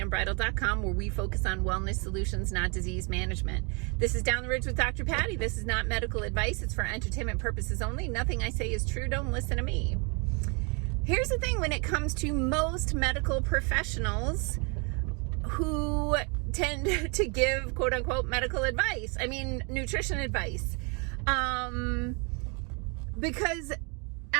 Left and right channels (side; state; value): left; quieter; 33.4 dB